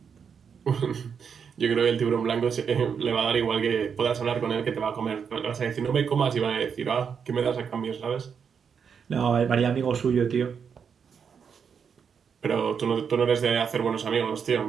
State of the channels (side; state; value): left; quieter; 6.8 dB